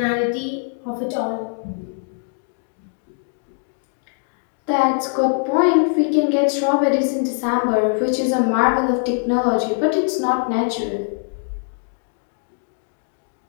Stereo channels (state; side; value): silent; right; digital silence